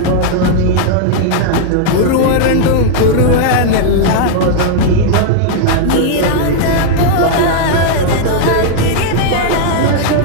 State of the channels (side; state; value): both; different; correlation -0.01